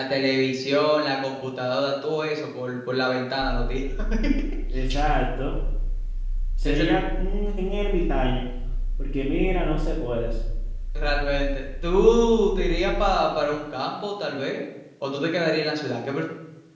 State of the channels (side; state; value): both; identical; correlation 1.00